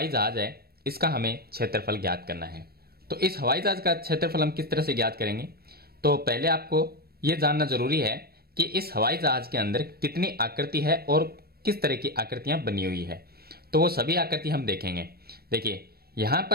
जहाज है इसका हमें क्षेत्रफल ज्ञात करना है। तो इस हवाई जहाज का क्षेत्रफल हम किस तरह से ज्ञात करेंगे? तो पहले आपको यह जानना जरूरी है कि इस हवाई जहाज के अंदर कितनी आकृति है और किस तरह की आकृतियां बनी हुई है। तो वो सभी आकृति हम देखेंगे। देखिए यहां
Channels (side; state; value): left; late; 0.45 ms